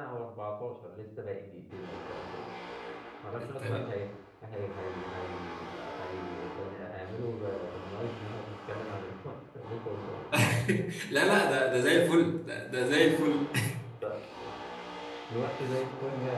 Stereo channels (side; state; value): both; identical; correlation 1.00